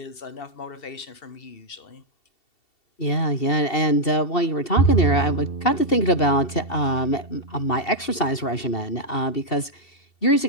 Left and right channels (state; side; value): late; right; 2.7 ms